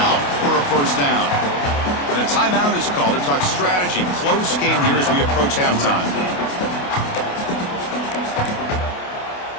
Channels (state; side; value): late; right; 28 ms